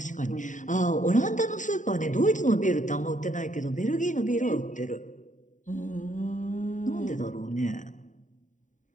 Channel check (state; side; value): late; right; 0.36 ms